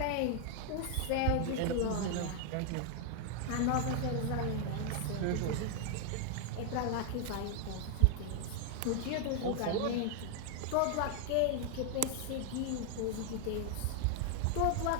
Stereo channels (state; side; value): different; both; correlation 0.00